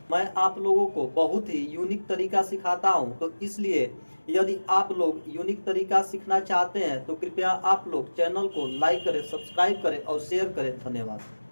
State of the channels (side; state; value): both; inverted; correlation -1.00